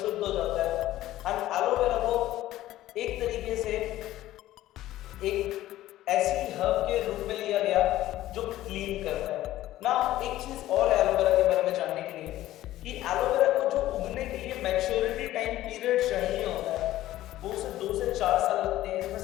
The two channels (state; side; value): quieter; right; 14.7 dB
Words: हो जाता है। एंड एलोवेरा को एक तरीके से एक ऐसी हर्ब के रूप में लिया गया जो क्लीन करता है ना। एक चीज और एलोवेरा के बारे में जानने के लिए कि एलोवेरा को जो उगने के लिए मैच्योरिटी टाइम पीरियड चाहिए होता है वो उसे 2 से 4 साल लगते हैं इसमें